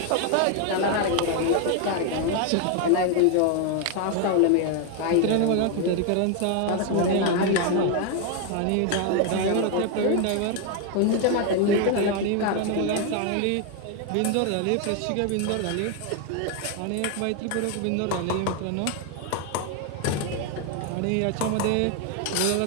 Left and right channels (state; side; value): different; both; correlation 0.01